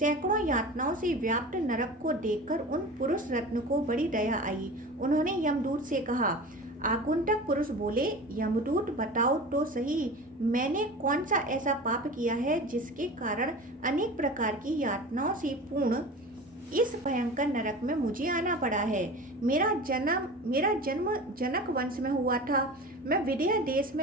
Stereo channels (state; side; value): normal; both; correlation 0.34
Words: यातनाओं से व्याप्त नरक को देखकर उन पुरुष रत्न को बड़ी दया आई। उन्होंने यमदूत से कहा। आगंतुक पुरुष बोले, यमदूत, बताओ तो सही, मैंने कौन सा ऐसा पाप किया है जिसके कारण अनेक प्रकार की यातनाओं से पूर्ण इस भयंकर नरक में मुझे आना पड़ा है। मेरा जन्म जनक वंश में हुआ था। मैं विदेह देश